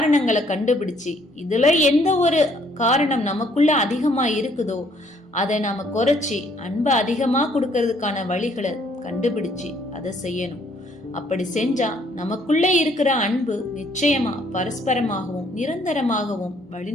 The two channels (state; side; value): normal; both; correlation 0.65